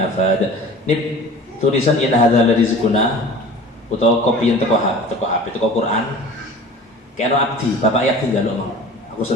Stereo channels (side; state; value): both; normal; correlation 0.41